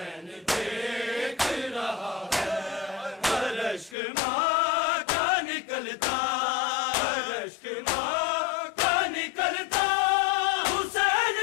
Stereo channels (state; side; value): drops out; right; at 4.0 s